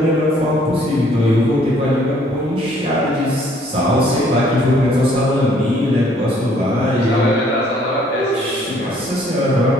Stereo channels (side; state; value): both; normal; correlation 0.62